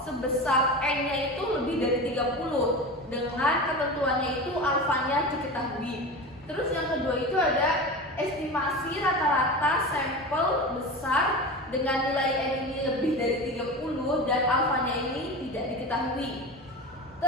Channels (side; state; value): both; normal; correlation 0.28